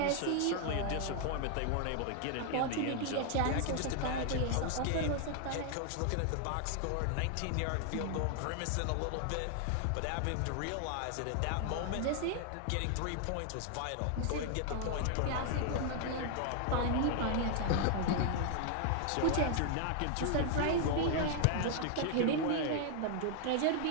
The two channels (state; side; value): different; both; correlation 0.00